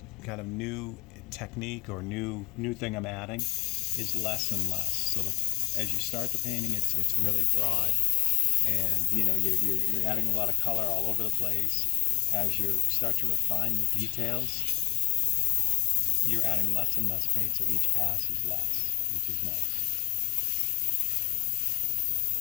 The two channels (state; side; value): quieter; right; 23.5 dB